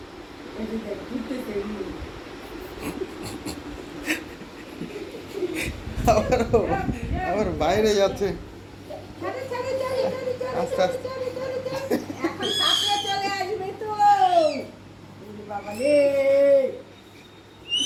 এই যে দেখ ঘুরতেছে এমনি। আবার বাইরে যাচ্ছে। চলে চলে চলে চলে চলে আস্তে আস্তে। চলে চলে চলে। এখন সাপড়ে চলে আসবে তো। ওরে বাবা রে।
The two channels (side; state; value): both; identical; correlation 1.00